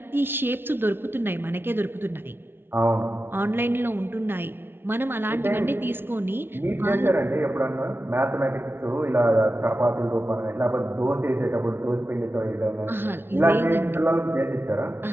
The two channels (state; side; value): late; left; 0.11 ms